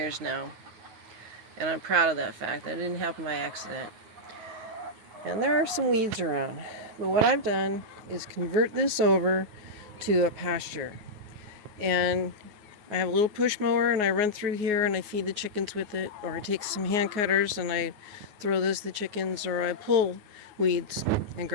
now, and I'm proud of that fact. That didn't happen by accident. And there are some weeds around. But what I've done is convert this over to a pasture. And I have a little push mower and I run through here and I feed the chickens with it. Or I take some hand cutters and I throw those to the chickens. Or I pull weeds and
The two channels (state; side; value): late; left; 9.5 ms